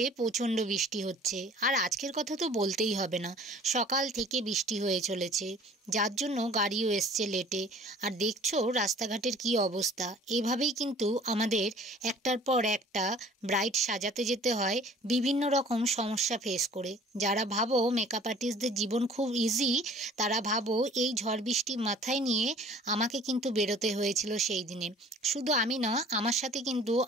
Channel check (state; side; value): normal; both; correlation 0.49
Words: প্রচণ্ড বৃষ্টি হচ্ছে, আর আজকের কথা তো বলতেই হবে না। সকাল থেকে বৃষ্টি হয়ে চলেছে, যার জন্য গাড়িও এসছে লেটে। আর দেখছো রাস্তাঘাটের কি অবস্থা। এভাবেই কিন্তু আমাদের একটার পর একটা ব্রাইড সাজাতে যেতে হয় বিভিন্ন রকম সমস্যা ফেস করে। যারা ভাবো মেকআপ আর্টিস্টদের জীবন খুব ইজি, তারা ভাবো এই ঝড় বৃষ্টি মাথায় নিয়ে আমাকে কিন্তু বেরোতে হয়েছিল সেই দিনে। শুধু আমি না, আমার সাথে কিন্তু